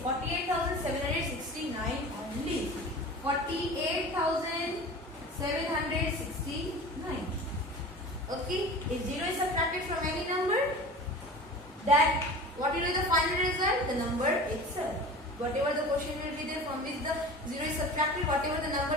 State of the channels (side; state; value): both; normal; correlation 0.36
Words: 48,769 only. 48,769. Okay, if 0 is subtracted from any number, that what will be the final result? The number itself. Whatever the question will be there from which the 0 is subtracted, whatever the